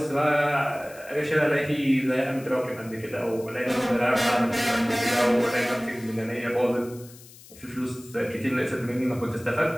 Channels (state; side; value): noise; left; hiss, 21 dB below the sound